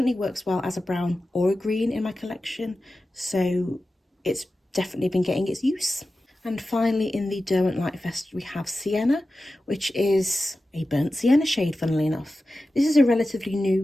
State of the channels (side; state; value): both; normal; correlation 0.94